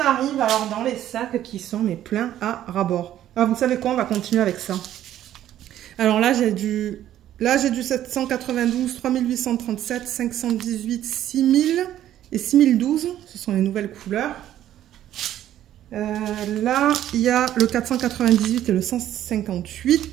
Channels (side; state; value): left; quieter; 12.0 dB